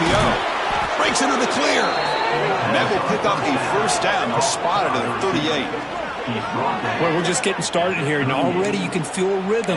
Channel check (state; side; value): identical; both; correlation 1.00